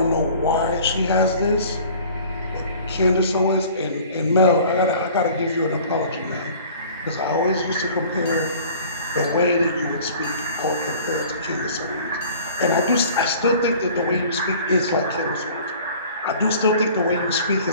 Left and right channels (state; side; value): inverted; both; correlation -0.48